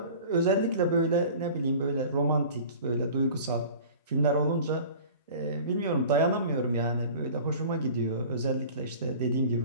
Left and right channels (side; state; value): both; inverted; correlation -0.42